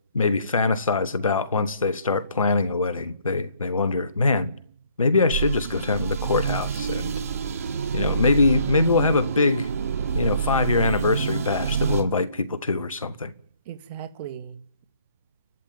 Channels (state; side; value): inverted; both; correlation -0.63